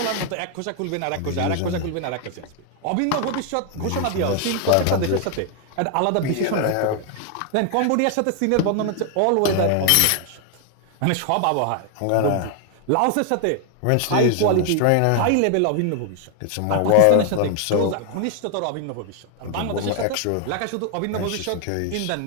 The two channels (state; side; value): different; both; correlation 0.00